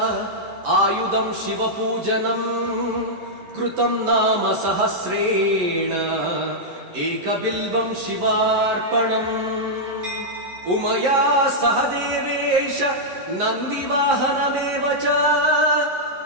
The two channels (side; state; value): left; late; 11 ms